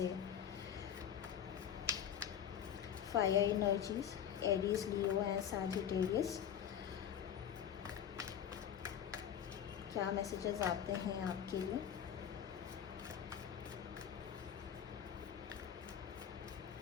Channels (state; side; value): quieter; right; 9.1 dB